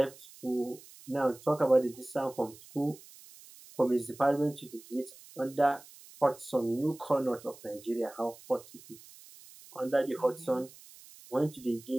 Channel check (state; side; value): noise; right; hiss, 21 dB below the sound